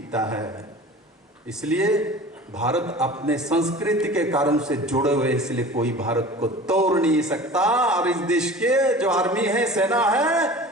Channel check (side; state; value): both; normal; correlation 0.40